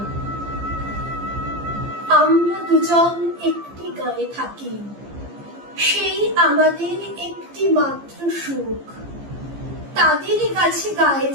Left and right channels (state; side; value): late; left; 15 ms